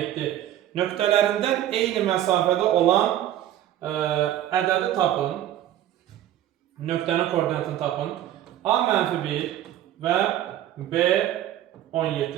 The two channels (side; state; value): left; quieter; 12.2 dB